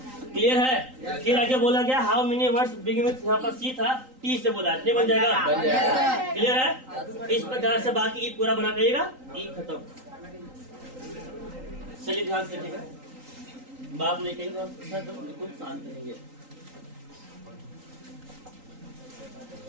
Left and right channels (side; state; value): left; late; 3.8 ms